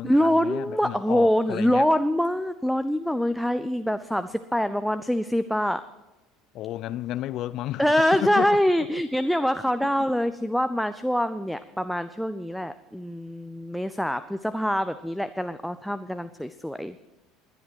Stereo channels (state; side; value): normal; both; correlation 0.95